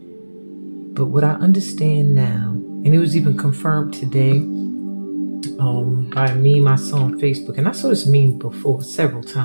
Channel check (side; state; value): both; inverted; correlation -1.00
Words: But what I understand now, and it was even confirmed today by a meme I saw on Facebook, and I saw this meme before several